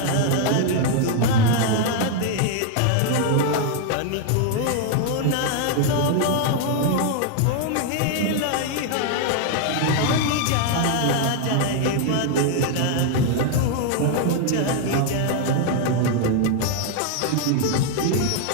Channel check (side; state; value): both; different; correlation 0.00